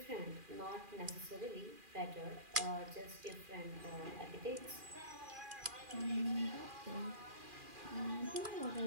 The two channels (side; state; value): left; late; 2.4 ms